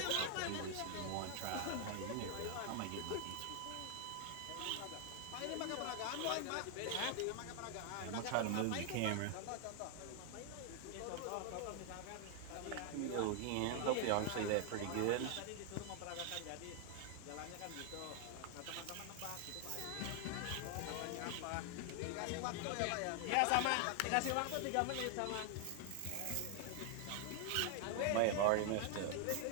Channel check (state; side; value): different; both; correlation 0.00